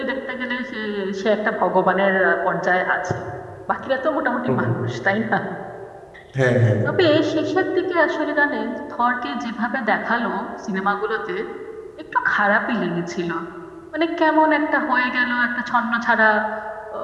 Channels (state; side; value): identical; both; correlation 1.00